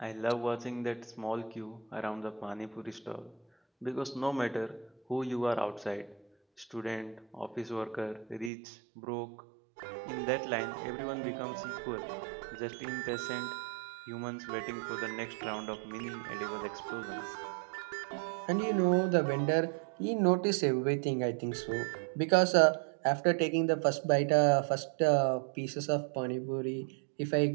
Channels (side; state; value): left; drops out; at 8.5 s